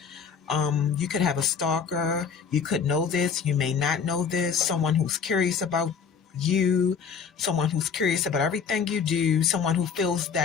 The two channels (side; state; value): right; quieter; 6.3 dB